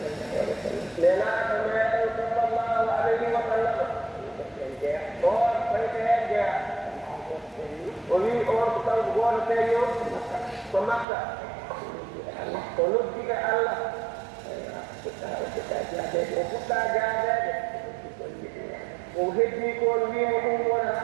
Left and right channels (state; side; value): drops out; left; at 11.1 s